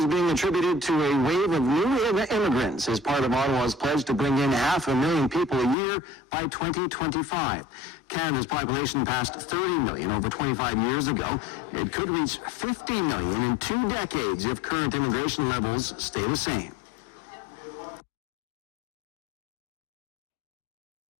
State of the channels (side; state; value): right; drops out; at 5.8 s